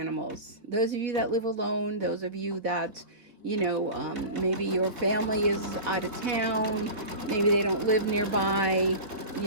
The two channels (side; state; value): left; late; 3.5 ms